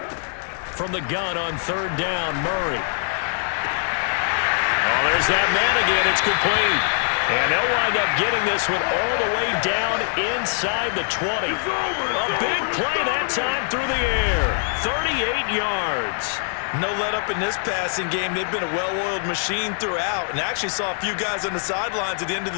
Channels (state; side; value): silent; right; digital silence